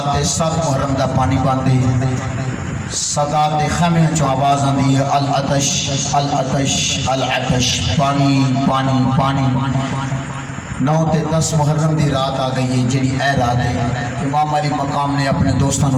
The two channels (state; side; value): identical; both; correlation 1.00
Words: تے 7 محرم دا پانی باندے سادات دے خیمے چوں آواز آندی ہے العطش العطش العطش پانی پانی پانی 9 تے 10 محرم دی رات آ گئی ہے جڑی اے رات ہے امام علی مقام نے اپنے دوستاں نو